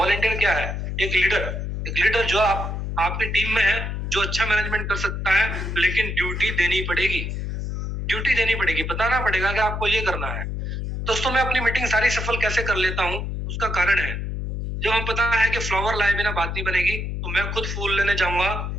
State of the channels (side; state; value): left; noise; hum, 3 dB below the sound